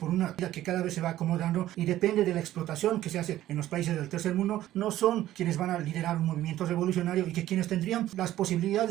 una vida que cada vez se va acomodando y depende de la explotación que se hace en los países del tercer mundo, no son quienes van a liderar un movimiento revolucionario, y que quienes tendrían las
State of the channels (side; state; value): left; quieter; 13.8 dB